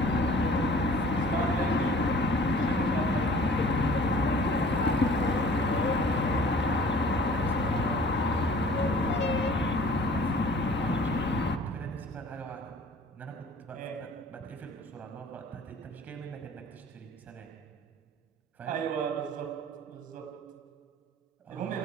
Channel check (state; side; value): normal; both; correlation 0.49